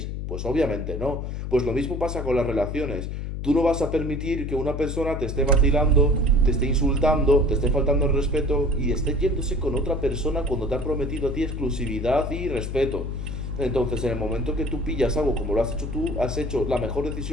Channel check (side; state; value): left; noise; hum, 5 dB below the sound